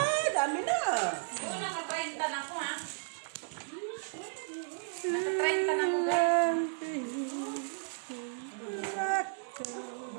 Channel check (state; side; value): silent; left; digital silence